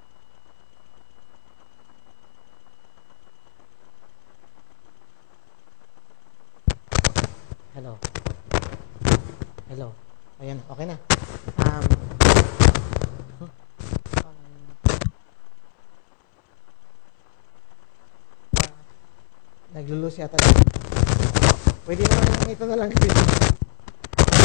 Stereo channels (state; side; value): silent; right; 65 dB below the other